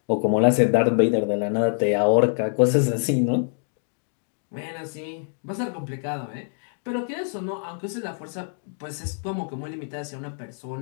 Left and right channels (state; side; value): silent; right; 62 dB below the other